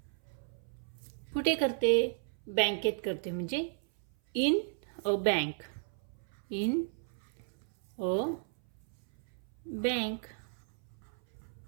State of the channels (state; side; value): silent; left; 55 dB below the other